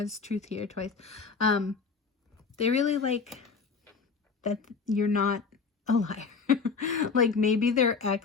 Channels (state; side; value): quieter; right; 5.1 dB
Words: truth here twice. They really like that you're not a liar. Like maybe their